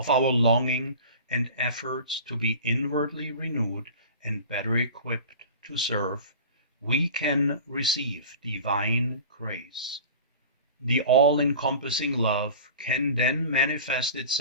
our longing and efforts to be inwardly renewed and better equipped to serve, we can receive divine grace. The all-encompassing love can then manifest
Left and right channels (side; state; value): both; inverted; correlation -0.38